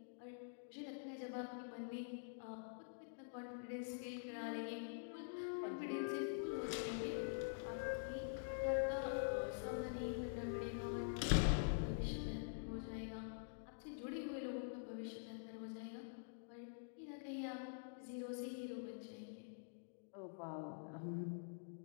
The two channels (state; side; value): silent; right; digital silence